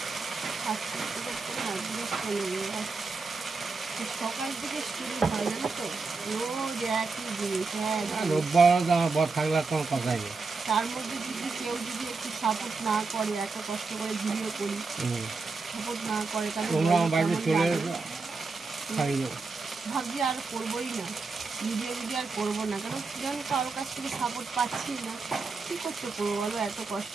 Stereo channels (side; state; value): left; quieter; 4.2 dB